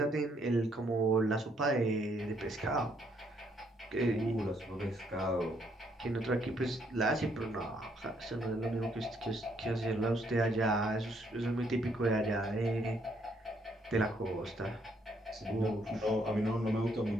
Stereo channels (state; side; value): normal; both; correlation 0.70